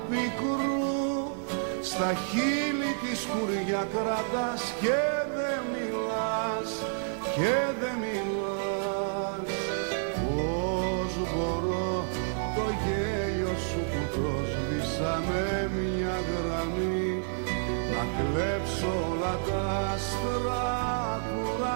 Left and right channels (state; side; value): silent; left; 58 dB below the other